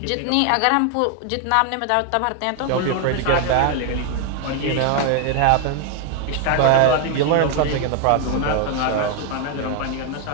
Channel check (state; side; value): different; both; correlation 0.00